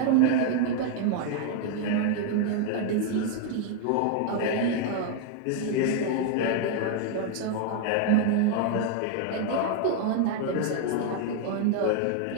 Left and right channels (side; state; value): both; different; correlation 0.00